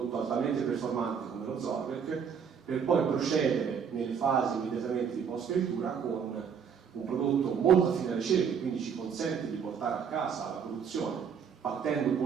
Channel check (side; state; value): left; quieter; 7.0 dB